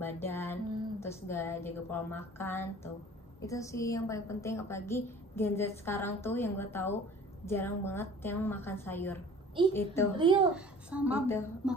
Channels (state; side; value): normal; both; correlation 0.47